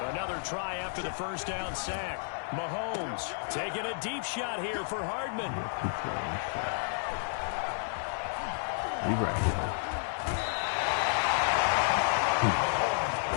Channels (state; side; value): silent; right; digital silence